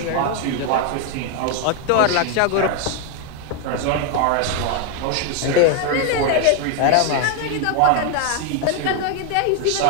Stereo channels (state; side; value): different; both; correlation 0.01